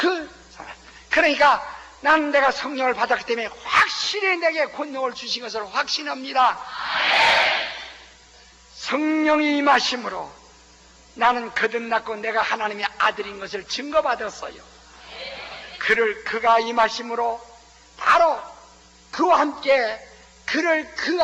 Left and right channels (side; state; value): both; identical; correlation 1.00